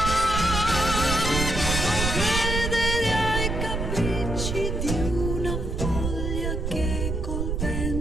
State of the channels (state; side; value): noise; right; rumble, 2 dB below the sound